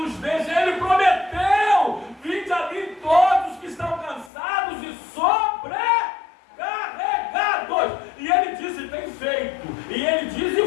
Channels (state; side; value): drops out; right; at 4.3 s